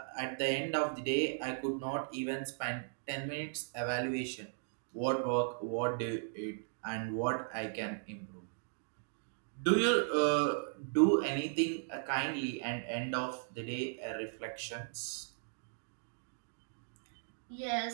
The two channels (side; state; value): left; silent; digital silence